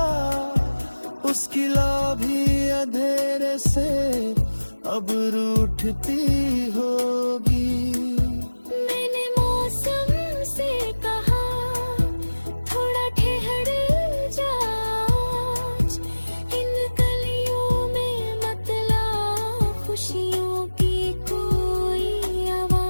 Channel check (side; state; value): both; inverted; correlation -1.00